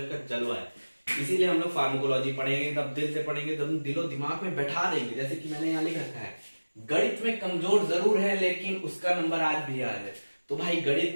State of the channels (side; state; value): both; inverted; correlation -1.00